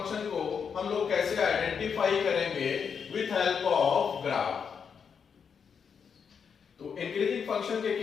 को हम लोग कैसे आइडेंटिफाई करेंगे विथ हेल्प ऑफ ग्राफ। तो इंक्रीजिंग फंक्शन के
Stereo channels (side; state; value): right; quieter; 6.6 dB